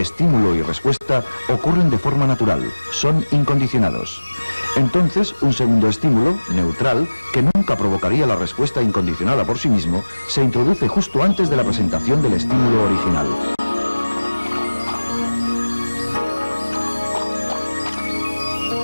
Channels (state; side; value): inverted; both; correlation -1.00